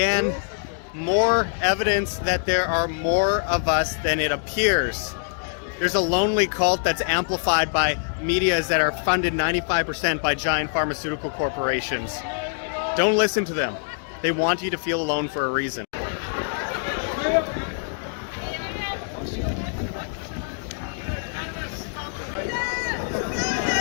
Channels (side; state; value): right; silent; digital silence